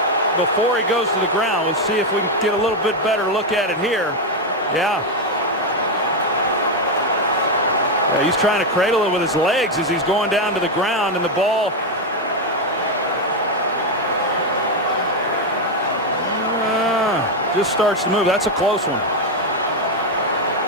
before he goes to the ground. Let's see if we can get a little bit better look at it here. Yeah, he's trying to cradle it with his legs as he's going down to the ground, and the ball just starts to move. That's a close one.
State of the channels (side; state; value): both; normal; correlation 0.05